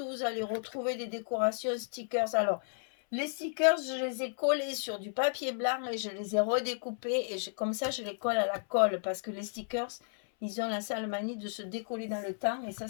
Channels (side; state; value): right; silent; 56 dB below the other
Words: vous allez retrouver des décorations stickers. Alors, les stickers, je les ai collés sur du papier blanc et je les ai redécoupés. Et comme ça, je les colle à la colle parce que les stickers, ils ont la sale manie de se décoller dans le temps et